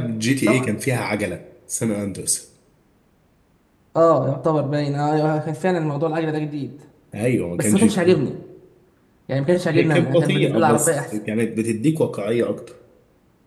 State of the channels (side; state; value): both; identical; correlation 1.00